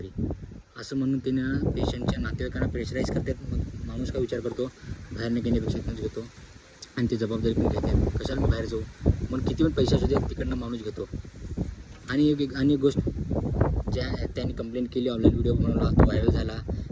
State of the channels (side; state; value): both; identical; correlation 1.00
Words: असं म्हणून त्यानं पेशंटच्या नातेवाईकांना प्रेशराईज करतात. मग माणूस काय विचार करतो, बाहेरनं घेण्यापेक्षा इथूनच घेतो आणि ती जबाबदारी पण घेतात. कशाला मी बाहेर जाऊ, मग किती पण पैसे असू दे तिकडनं माणूस घेतो. आणि एक गोष्ट, ज्या त्यांनी कंप्लेंट केली, ऑनलाईन व्हिडिओ बनवला, तो व्हायरल झाला